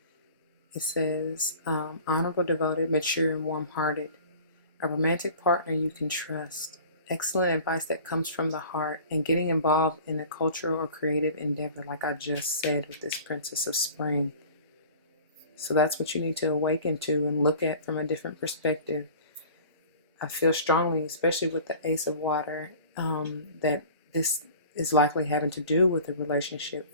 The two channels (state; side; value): inverted; both; correlation -0.43